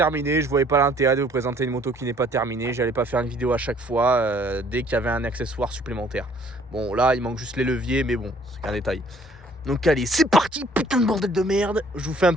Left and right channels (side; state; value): both; normal; correlation 0.58